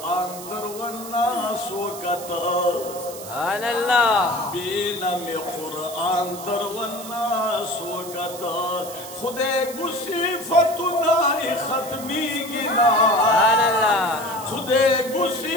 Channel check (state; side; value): noise; right; hiss, 13 dB below the sound